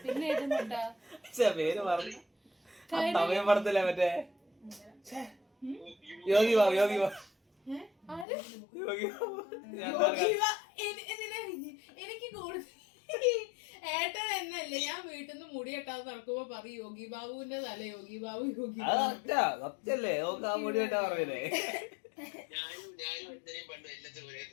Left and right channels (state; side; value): drops out; right; at 8.2 s